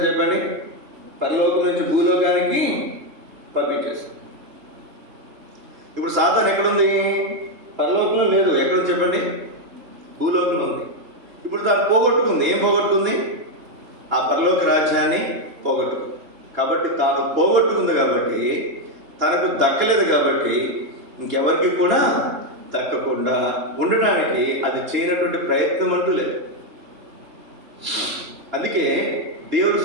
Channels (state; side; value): late; left; 2.9 ms